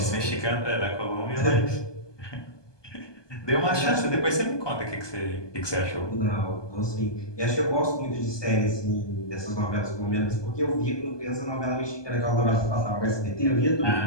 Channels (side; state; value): right; late; 1.2 ms